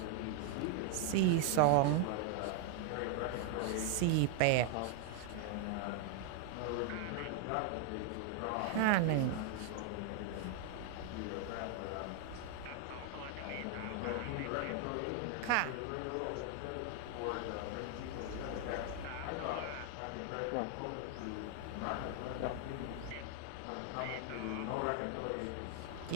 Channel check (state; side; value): different; both; correlation 0.00